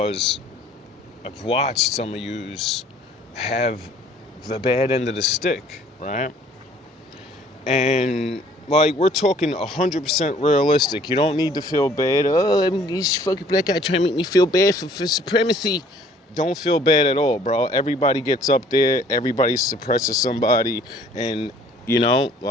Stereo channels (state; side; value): normal; both; correlation 0.57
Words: I've watched some of yous have the bad end of the stick, right? And like, we're talking 100% realistic. You don't need to feel bad. Oh, this fucking black guy trying to make me feel bad for supremacy. Don't feel bad at all, bro. Everybody gets up there. Everybody suppresses somebody. And,